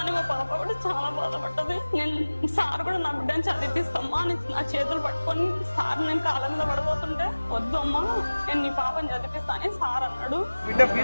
మా పాప కూడా చాలా బాధపడ్డది. నేను సార్ కూడా నా బిడ్డని చదివిస్తామ్మా అని నా చేతులు పట్టుకొని సార్ నేను కాళ్ళ మీద పడిపోతుంటే, వద్దు అమ్మా నేను నీ పాపని చదివిస్తానని సార్ అన్నాడు. బిడ్డ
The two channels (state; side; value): inverted; both; correlation -1.00